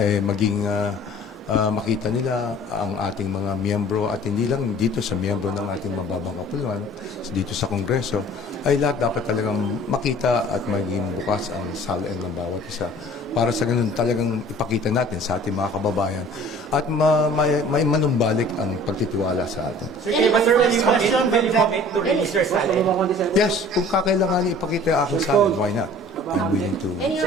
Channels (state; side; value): normal; both; correlation 0.48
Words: maging makita nila ang ating mga miyembro at hindi lang dito sa miyembro ng ating mababang kapuluan, dito sa Kongreso, ay lahat dapat talagang makita at maging bukas ang salin ng bawat isa. Para sa ganun talagang ipakita natin sa ating mga kababayan at may manumbalik ang pagtitiwala sa atin. Sir, kaya ba sir, will you commit to release your SALEC? Yes, kung kakailangan ipakita ang aking salin, why not? I'm willing to.